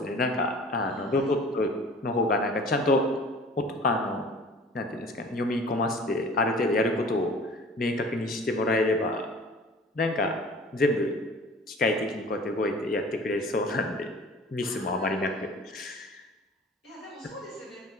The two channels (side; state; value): both; normal; correlation 0.45